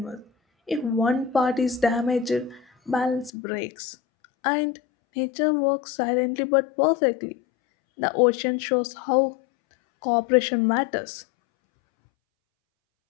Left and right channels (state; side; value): drops out; right; at 3.3 s